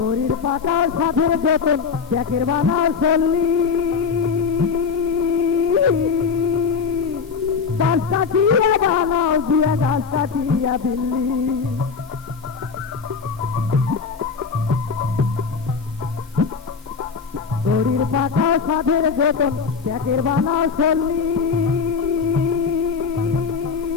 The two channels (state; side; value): quieter; right; 5.6 dB